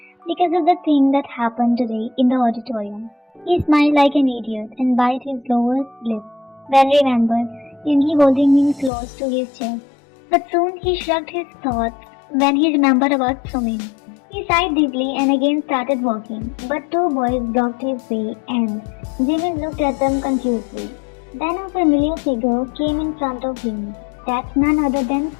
Because of the thing that happened today in the auditorium. He smiled like an idiot and bit his lower lip. Then remembered Yoongi holding him close to his chest. But soon he shrugged his thoughts when he remembered about Sumin. He sighed deeply and again started walking, but two boys blocked his way and Jimin looked at them confusedly. Then a familiar figure came in front of him. That's none other than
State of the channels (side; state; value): right; drops out; at 8.9 s